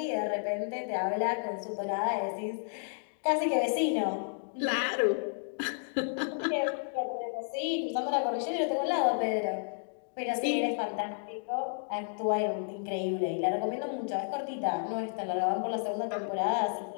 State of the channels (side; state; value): right; silent; digital silence